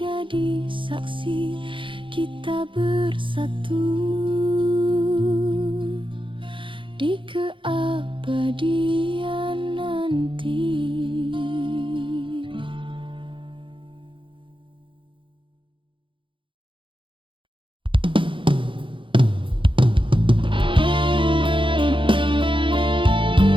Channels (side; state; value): left; late; 0.25 ms